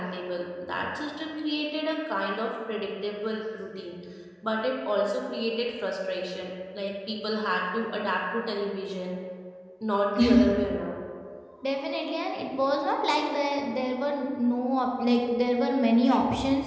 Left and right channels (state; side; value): identical; both; correlation 1.00